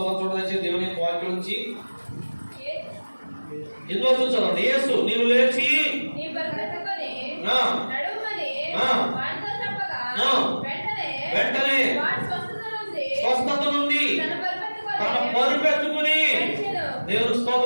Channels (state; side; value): inverted; both; correlation -1.00